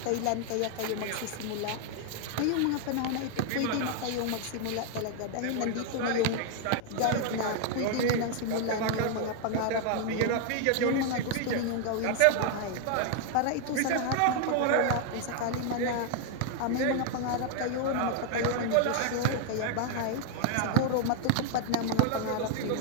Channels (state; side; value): different; both; correlation 0.00